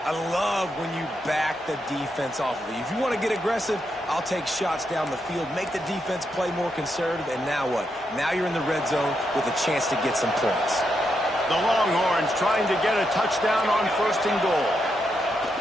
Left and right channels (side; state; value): both; normal; correlation 0.82